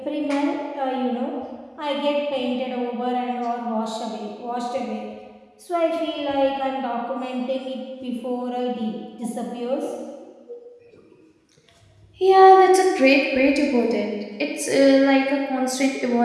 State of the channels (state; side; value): identical; both; correlation 1.00